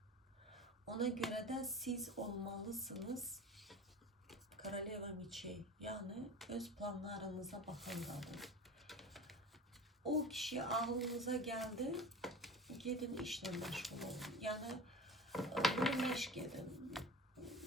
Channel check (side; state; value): both; normal; correlation 0.35